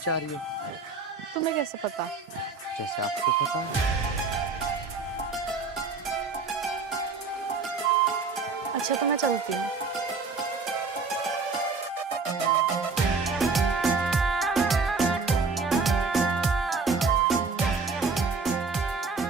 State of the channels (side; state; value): left; quieter; 4.4 dB